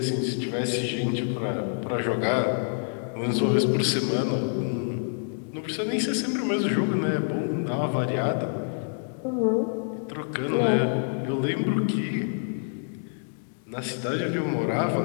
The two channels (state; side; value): silent; right; digital silence